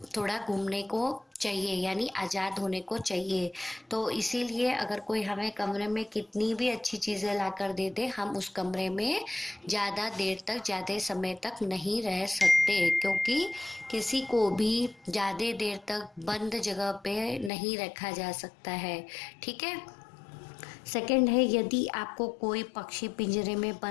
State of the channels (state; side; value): drops out; right; at 17.5 s